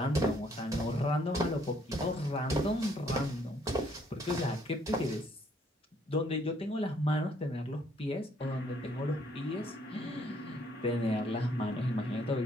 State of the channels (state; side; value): normal; both; correlation 0.66